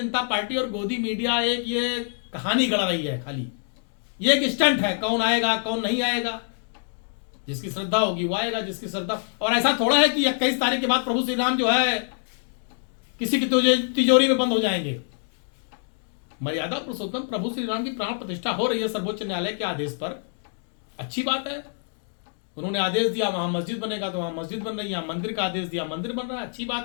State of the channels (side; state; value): right; silent; digital silence